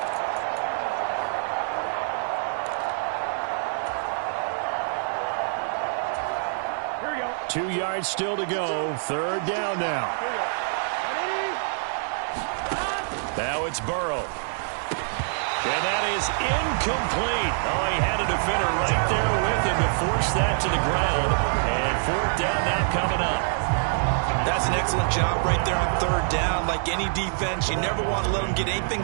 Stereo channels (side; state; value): left; silent; digital silence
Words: Here we go. 2 yards still to go. 3rd down now. Here we go. Now it's Burrow. And that is incomplete. Oh, he had a defender right there with him to force that to the ground. And 4th down now coming up. That's an excellent job right there on 3rd down. Like any defense, you never want to let them get anything